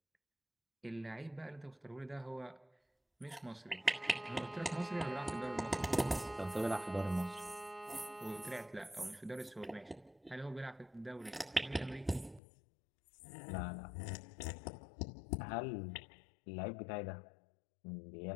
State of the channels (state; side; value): drops out; right; at 12.4 s